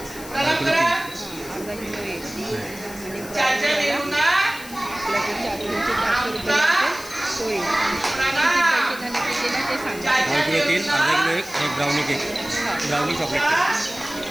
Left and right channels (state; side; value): noise; left; hiss, 15 dB below the sound